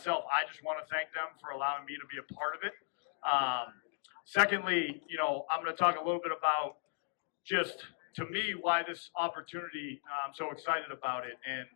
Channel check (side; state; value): right; silent; digital silence